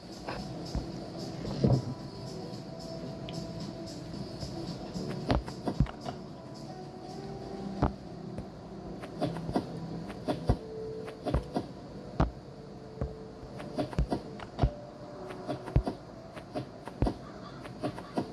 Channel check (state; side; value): identical; both; correlation 1.00